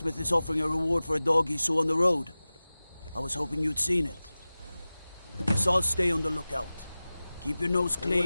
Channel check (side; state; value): both; inverted; correlation -0.97